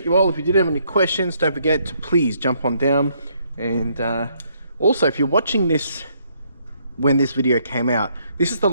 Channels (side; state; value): both; inverted; correlation -0.70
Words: you all. If you did have any questions, don't forget to please jump on down. And also, if you're watching this when this video came out, this is the